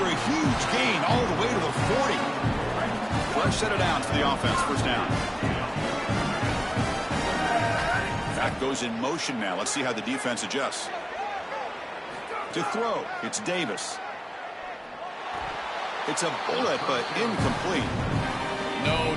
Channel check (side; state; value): both; identical; correlation 1.00